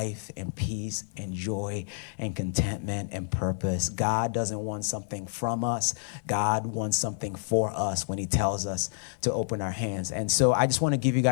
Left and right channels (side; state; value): right; silent; 59 dB below the other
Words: and peace and joy and contentment and purpose. God doesn't want something from us. God wants something for us when he tells us to open our hands. And so I just want to give you